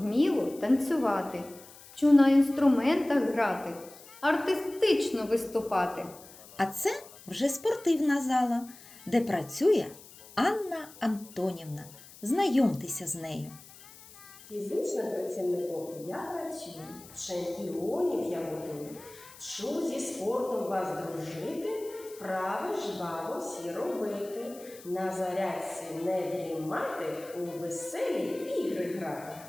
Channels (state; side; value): noise; left; hiss, 20 dB below the sound